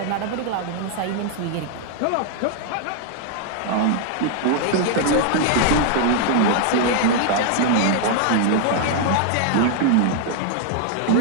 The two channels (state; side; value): different; both; correlation 0.00